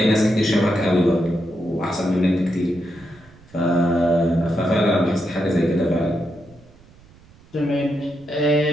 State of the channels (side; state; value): right; noise; rumble, 26 dB below the sound